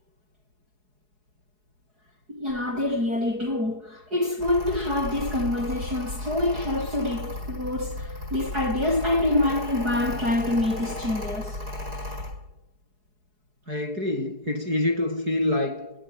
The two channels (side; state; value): left; late; 4.7 ms